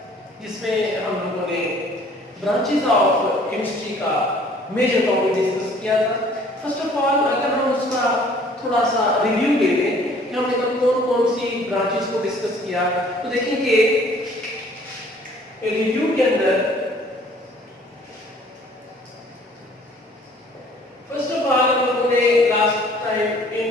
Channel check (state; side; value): normal; both; correlation 0.55